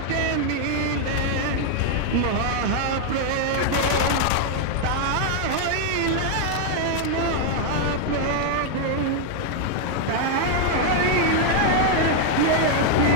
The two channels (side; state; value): both; different; correlation 0.00